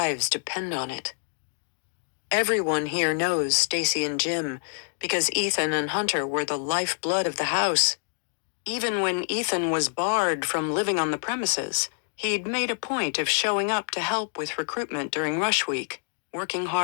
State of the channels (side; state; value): right; silent; digital silence